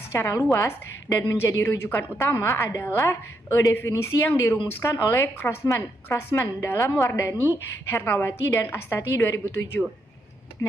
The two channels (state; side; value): normal; both; correlation 0.79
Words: secara luas dan menjadi rujukan utama adalah definisi yang dirumuskan oleh Crossman dalam Wardani, Hernawati, dan Astati 2007.